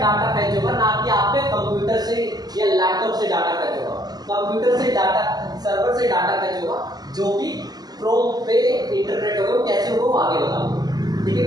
फैच होगा, ना कि आपके कंप्यूटर से या लैपटॉप से डाटा फैच होगा। कंप्यूटर से डाटा, सर्वर से डाटा फैच होगा, जो कि क्रोम पे इंटरप्रेट होगा, कैसे होगा वो आगे बताऊंगा। ठीक है,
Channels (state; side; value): late; left; 0.19 ms